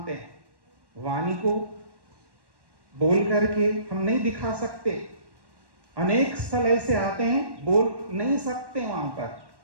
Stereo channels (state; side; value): late; left; 1.1 ms